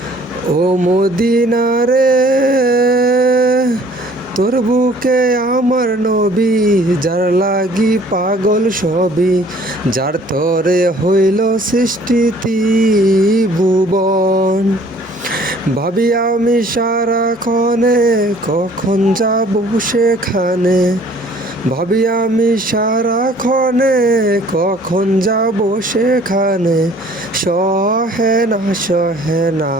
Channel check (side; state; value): both; normal; correlation 0.55